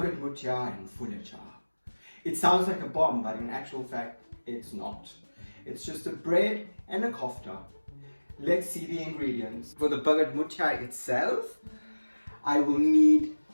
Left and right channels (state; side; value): inverted; both; correlation -1.00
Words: Moothia and fooletcha. It sounds like a bomb, but in actual fact, it's not. It's just a bread and a kofta. Let's see the ingredients. For the Bhagat Moothia itself, I will need